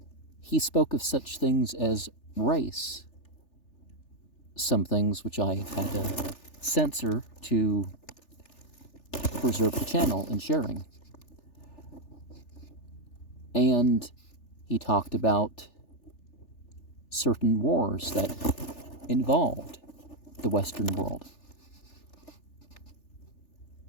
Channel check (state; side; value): late; right; 3.4 ms